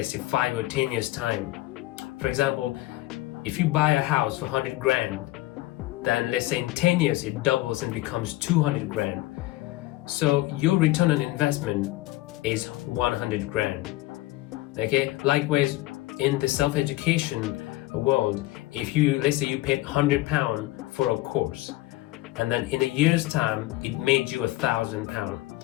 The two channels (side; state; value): right; quieter; 18.0 dB